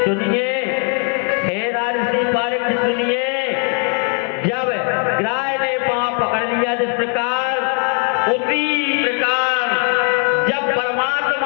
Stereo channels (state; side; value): quieter; right; 39.3 dB